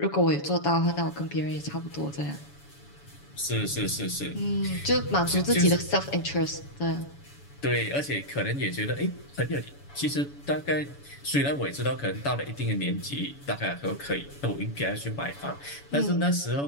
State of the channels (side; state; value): right; late; 7.1 ms